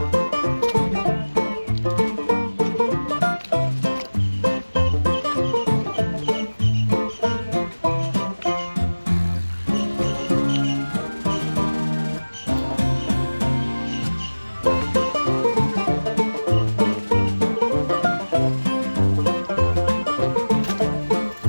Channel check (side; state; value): both; inverted; correlation -1.00